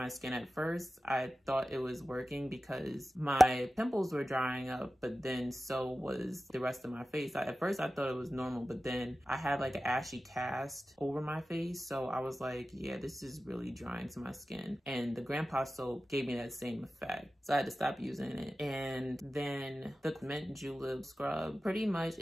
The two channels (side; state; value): both; normal; correlation 0.95